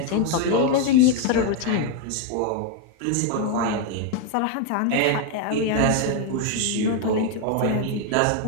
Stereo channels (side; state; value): both; different; correlation 0.01